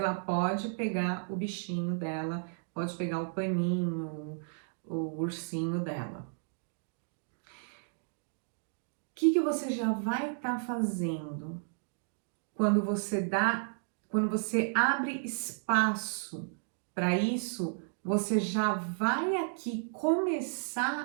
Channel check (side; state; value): left; silent; digital silence